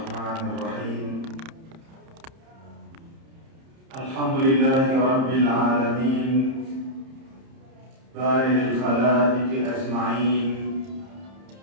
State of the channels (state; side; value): late; left; 30 ms